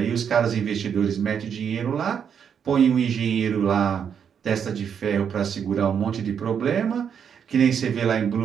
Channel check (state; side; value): quieter; left; 7.7 dB